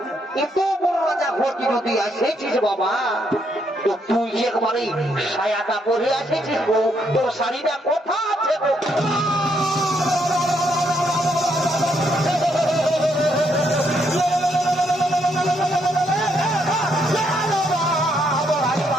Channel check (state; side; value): normal; both; correlation 0.74